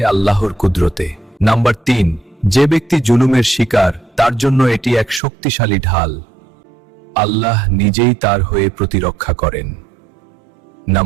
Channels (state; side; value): drops out; left; at 5.2 s